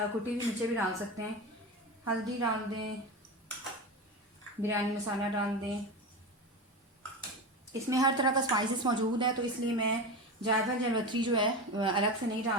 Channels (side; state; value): both; normal; correlation 0.23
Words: कुटी हुई मिर्चें भी डाल सकते हैं। हल्दी डाल दें, बिरयानी मसाला डाल दें। इसमें हर तरह का स्पाइसेस मौजूद है, तो इसलिए मैं जायफल जलवत्री जो है अलग से नहीं